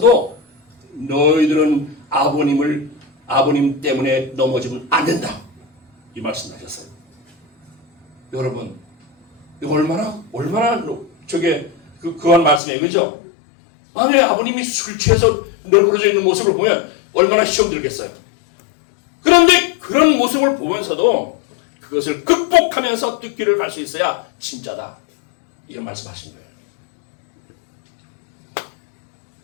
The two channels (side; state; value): right; drops out; at 12.6 s